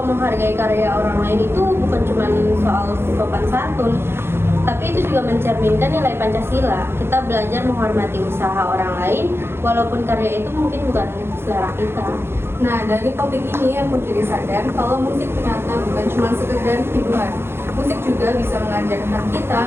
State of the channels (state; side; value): late; left; 0.11 ms